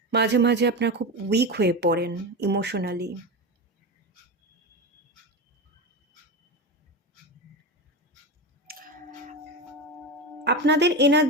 মাঝে মাঝে আপনারা খুব উইক হয়ে পড়েন ইমোশনালি। আপনাদের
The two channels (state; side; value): normal; both; correlation 0.20